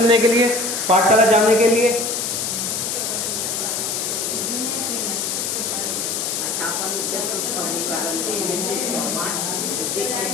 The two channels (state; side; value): noise; left; hiss, 1 dB below the sound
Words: के लिए, पाठशाला जाने के लिए